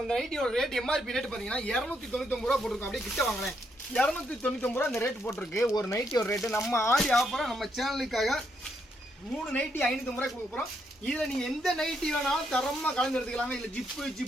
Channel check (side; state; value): both; normal; correlation 0.77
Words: இந்த நைட்டியோட ரேட் எம்ஆர்பி ரேட் பாத்தீங்கன்னா 299 ரூபா போட்டிருக்கோம். அப்படியே கிட்ட வாங்கினேன் 299 ரூபா இந்த ரேட் போட்டிருக்கு. ஒரு நைட்டியோட ரேட்டு நம்ம ஆடி ஆஃபரா நம்ம சேனலுக்காக 3 நைட்டி 550 ரூபாய் கொடுக்க போறோம். இதில் நீங்கள் எந்த நைட்டி வேணாலும் தரமாக கலந்து எடுத்துக்கலாங்க. இல்லை